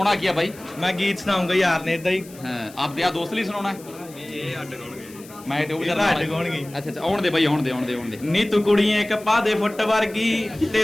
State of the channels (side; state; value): left; noise; hiss, 21 dB below the sound